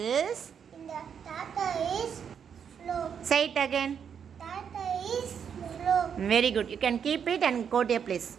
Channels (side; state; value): left; quieter; 7.5 dB